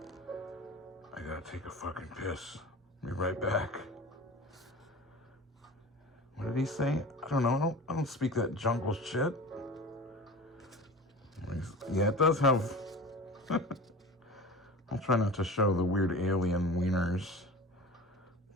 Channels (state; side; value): normal; both; correlation 0.36